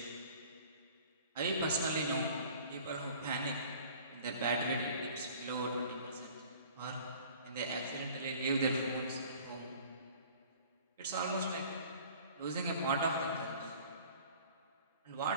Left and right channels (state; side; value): inverted; both; correlation -0.48